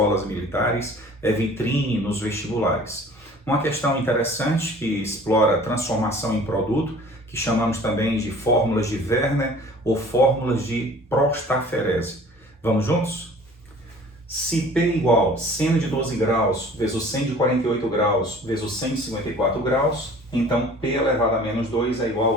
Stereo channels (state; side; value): normal; both; correlation 0.48